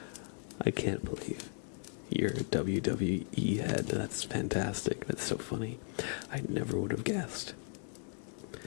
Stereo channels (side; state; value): right; silent; 54 dB below the other